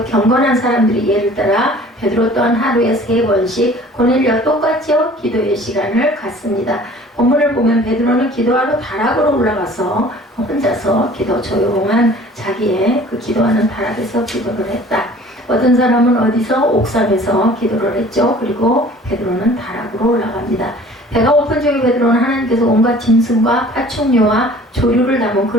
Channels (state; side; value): normal; both; correlation 0.48